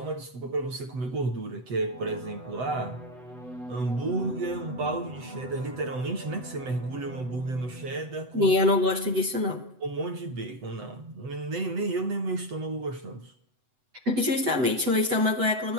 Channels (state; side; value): late; left; 7.9 ms